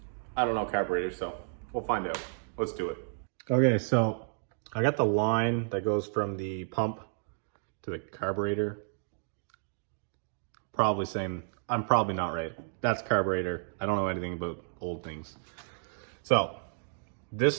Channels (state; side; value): silent; left; digital silence